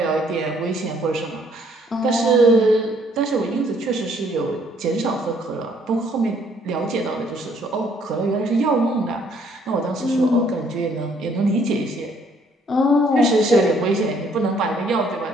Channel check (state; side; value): normal; both; correlation 0.64